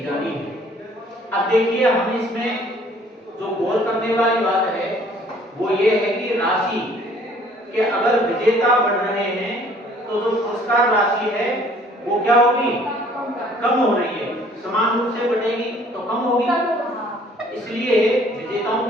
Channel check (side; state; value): both; normal; correlation 0.57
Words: जानी है। अब देखिए, हम इसमें जो गौर करने वाली बात है वो ये है कि राशि के अगर विजेता बढ़ रहे हैं तो जो पुरस्कार राशि है वो क्या होगी, कम हो रही है। समान रूप से बढ़ेगी तो कम होगी, इसलिए विजेताओं